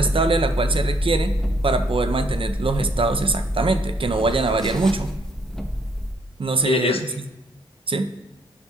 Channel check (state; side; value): normal; both; correlation 0.67